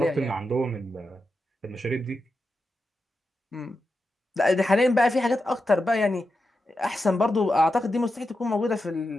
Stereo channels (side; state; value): both; normal; correlation 0.89